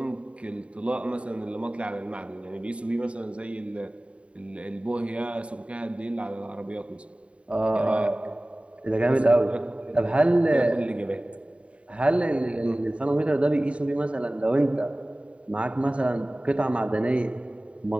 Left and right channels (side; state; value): left; late; 0.062 ms